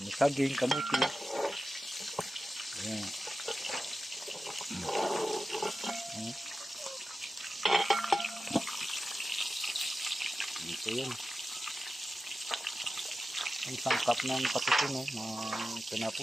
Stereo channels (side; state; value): both; normal; correlation 0.93